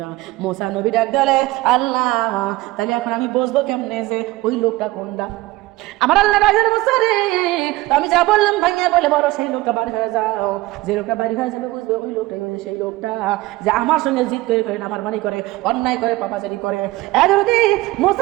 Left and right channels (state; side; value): quieter; left; 19.3 dB